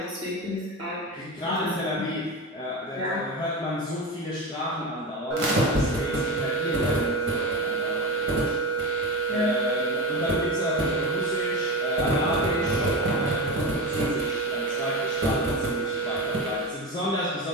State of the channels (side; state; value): both; normal; correlation 0.23